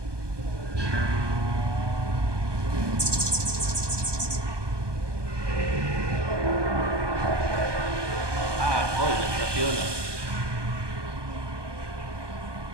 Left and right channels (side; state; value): left; late; 1.2 ms